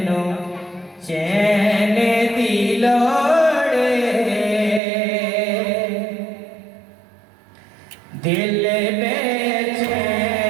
नो चैन दिलोड़े दिल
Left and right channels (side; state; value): left; drops out; at 4.8 s